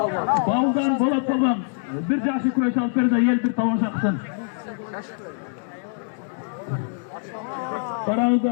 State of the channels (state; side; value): silent; right; digital silence